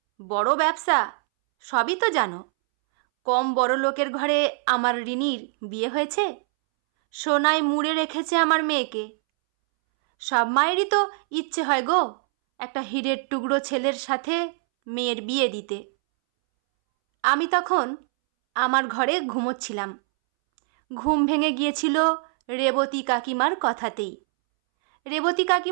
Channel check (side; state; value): left; silent; 63 dB below the other